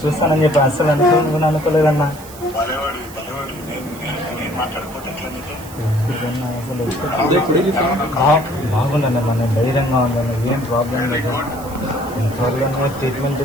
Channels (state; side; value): noise; right; hiss, 18 dB below the sound